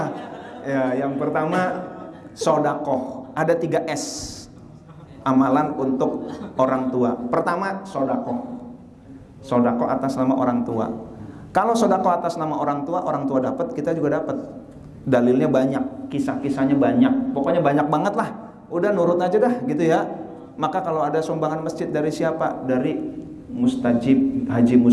Ya, yang pertama sodakoh. Ada 3 S amalan untuk orang tua. Pertama sodakoh. Sodakoh atas nama orang tua. Kalau sodakoh atas nama orang tua dapat, kita juga dapat. Dalilnya banyak, kisah-kisahnya banyak. Pokoknya banyak banget lah. Udah nurut aja dah gitu ya. Maka kalau ada sumbangan masjid dari siapa? Dari Mustajib, Haji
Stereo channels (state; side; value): identical; both; correlation 1.00